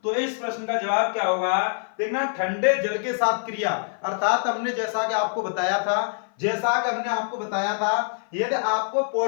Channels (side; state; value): right; silent; 56 dB below the other